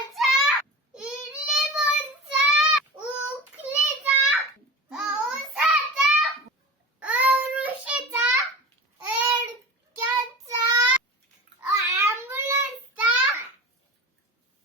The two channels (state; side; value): normal; both; correlation 0.32